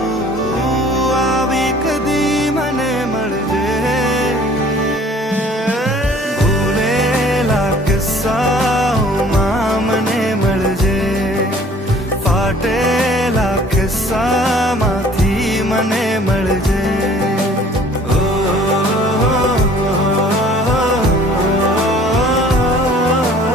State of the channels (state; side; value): normal; both; correlation 0.53